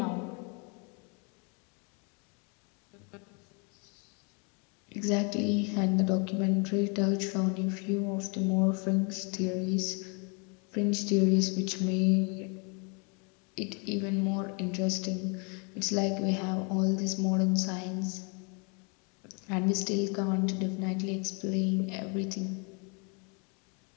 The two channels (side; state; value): right; quieter; 34.7 dB